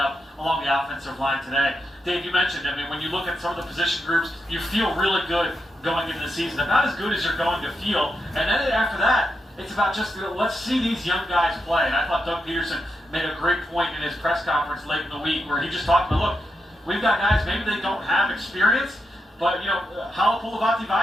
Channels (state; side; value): normal; both; correlation 0.85